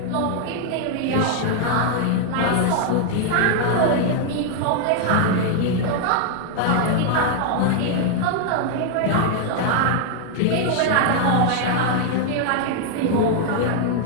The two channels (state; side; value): different; both; correlation 0.00